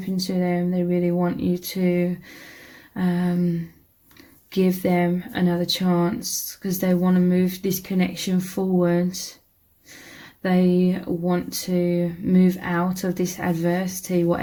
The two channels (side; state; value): both; identical; correlation 1.00